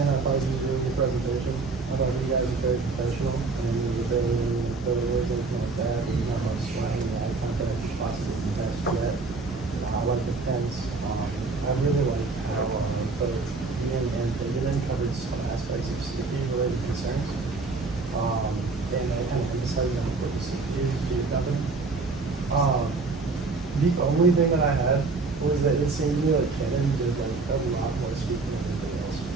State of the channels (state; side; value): quieter; left; 3.9 dB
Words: I thought you did a really good presentation. I thought you guys were very professional, and you were very words, everything like that. And you know how to explain the eye contact possibly the best yet. I like the fence. I really like how both Ian and David covered some aspects of safety related concerns. And I kind of emphasized on what the security is being covered. The only thing that I had was that it seemed to me like Canon did like a lot more speaking than anything else.